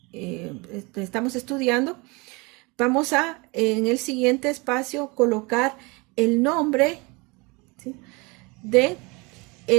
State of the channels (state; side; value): quieter; left; 27.2 dB